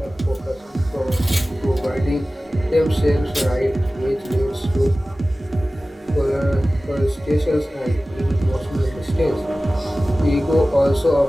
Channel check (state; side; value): normal; both; correlation 0.97